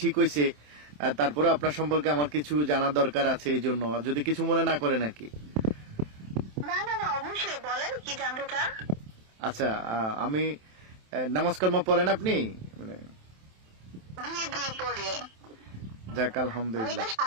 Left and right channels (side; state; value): left; late; 27 ms